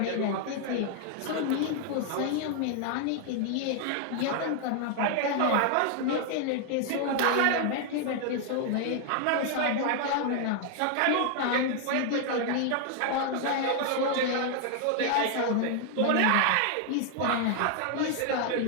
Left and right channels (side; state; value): both; different; correlation 0.00